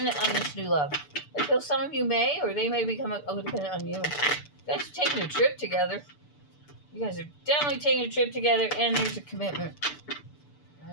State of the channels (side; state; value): right; late; 6.8 ms